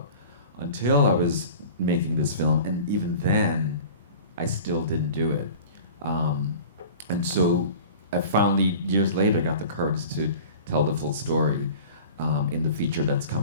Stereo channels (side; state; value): both; inverted; correlation -0.40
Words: until I was making this film, and even then, I still didn't do it. And so I finally, years later, got the courage to tell the full story in the feature that's